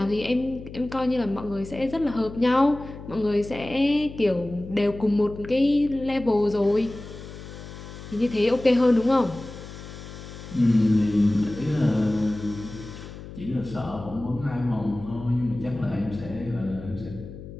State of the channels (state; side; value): noise; left; hum, 13 dB below the sound